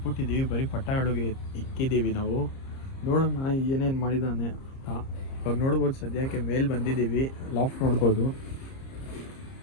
ಬರೀ ಪಟಾಗಳಿಗೆ ಇಕ್ಕಿದ್ದೀವಿ ನಾವು. ನೋಡೋಣ ಏನೇನು ಮಾಡಿದ್ದಾನೆ ಅಂತ. ಇವಾಗ ನೋಡ್ಬೋದು, ಸದ್ಯಕ್ಕೆ ಮೇಲೆ ಬಂದಿದ್ದೀವಿ. ಲಾಫ್ಟ್ ನೋಡ್ಬೋದು,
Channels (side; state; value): right; late; 30 ms